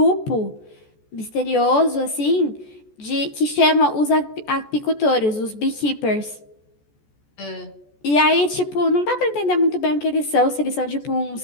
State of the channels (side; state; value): right; late; 14 ms